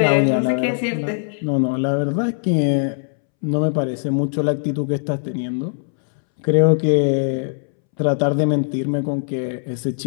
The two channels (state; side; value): silent; right; 66 dB below the other